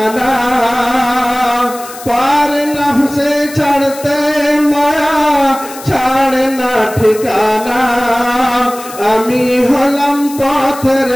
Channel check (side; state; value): left; noise; hiss, 15 dB below the sound